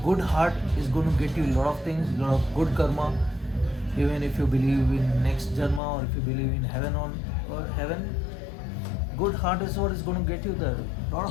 good heart is gonna get you a lot of things, a lot of good karma. Even if you believe in next janma or if you believe in heaven or heaven, good heart is what is gonna get you there. A lot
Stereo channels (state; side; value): drops out; right; at 5.8 s